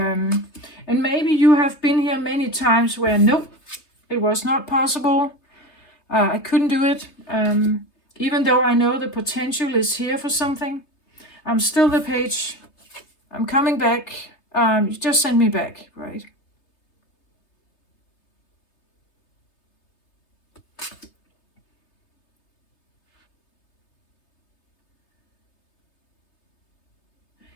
maybe you have been here many times where nope, it was not possible. I couldn't do it. Even though I know the potential is here for something, I'm still the page. I'm coming back. You just send me back, right?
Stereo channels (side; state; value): right; late; 3.3 ms